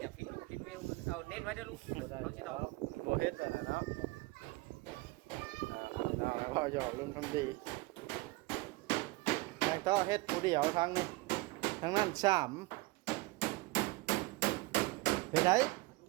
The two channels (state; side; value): quieter; left; 22.2 dB